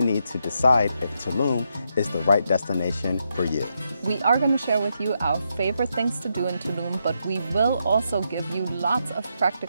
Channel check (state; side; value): inverted; both; correlation -0.81